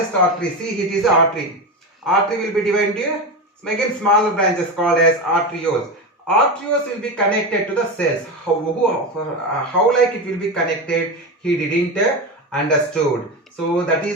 see it is an artery will be divided into again smaller branches called as arterioles. Arterioles will be connected to the cells. How like it will be connected, he didn't understood. So that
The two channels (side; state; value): both; normal; correlation 0.19